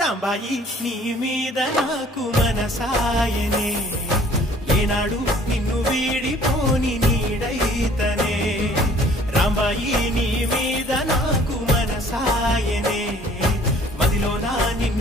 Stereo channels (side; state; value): both; normal; correlation 0.55